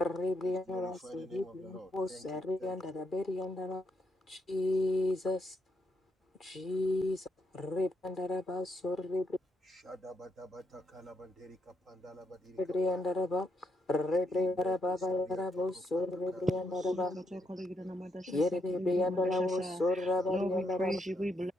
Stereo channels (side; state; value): both; normal; correlation 0.78